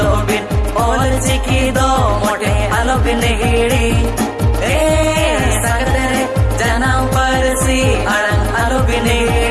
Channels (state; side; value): identical; both; correlation 1.00